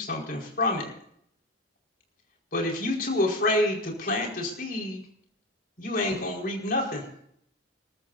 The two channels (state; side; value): normal; both; correlation 0.22